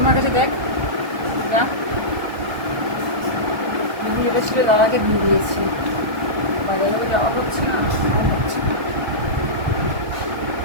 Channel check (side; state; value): left; late; 1.2 ms